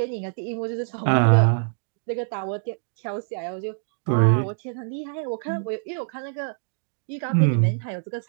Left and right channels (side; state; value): left; silent; digital silence